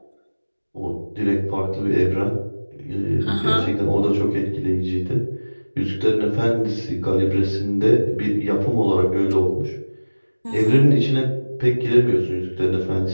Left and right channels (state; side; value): inverted; both; correlation -1.00